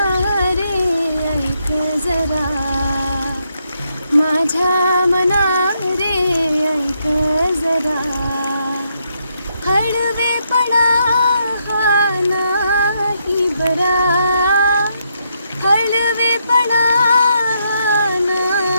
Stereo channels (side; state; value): both; inverted; correlation -0.77